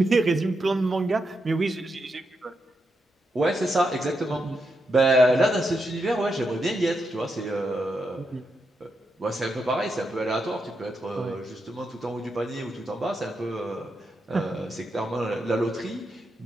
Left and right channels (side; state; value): both; normal; correlation 0.84